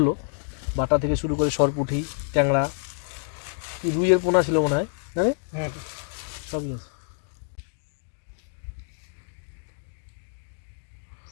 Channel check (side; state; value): right; silent; digital silence